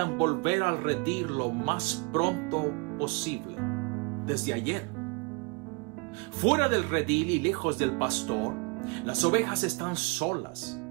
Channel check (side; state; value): left; quieter; 30.1 dB